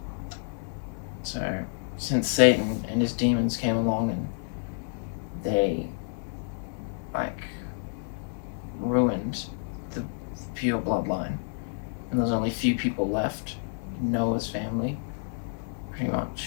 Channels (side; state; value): right; silent; 58 dB below the other